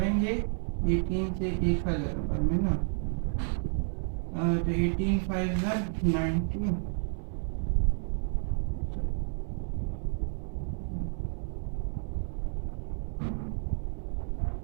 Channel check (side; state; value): left; silent; 57 dB below the other